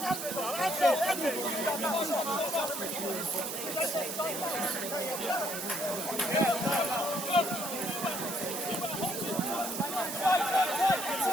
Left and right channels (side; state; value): right; noise; hiss, 5 dB below the sound